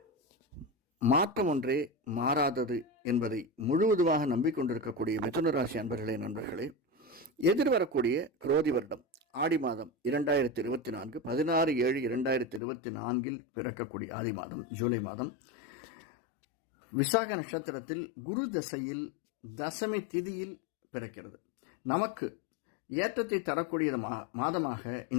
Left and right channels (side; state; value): right; drops out; at 12.6 s